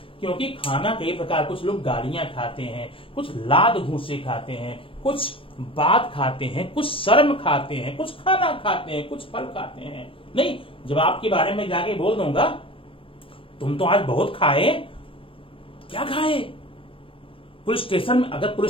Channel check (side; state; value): right; late; 0.26 ms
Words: क्योंकि खाना कई प्रकार, कुछ लोग गालियां खाते हैं, कुछ लाद घूसे खाते हैं, कुछ बात खाते हैं, कुछ शर्म खाते हैं, कुछ खाना खाते हैं, कुछ फल खाते हैं। नहीं, जब आपके बारे में जाके बोल दूंगा तुम तो आज बहुत खाए, क्या खाए? पुलिस स्टेशन में, अगर